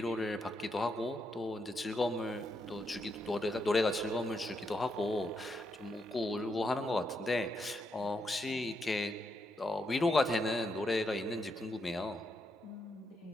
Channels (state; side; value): normal; both; correlation 0.80